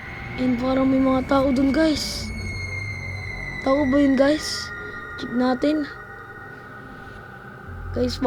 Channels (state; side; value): identical; both; correlation 1.00